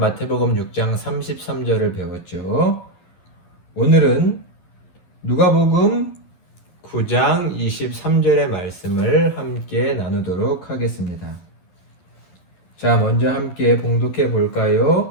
6장 33절을 배웠죠. 오늘은 누가복음 9장 23절의 말씀을 함께 나누도록 하겠습니다. 자, 먼저 함께 봉독해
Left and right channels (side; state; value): right; late; 11 ms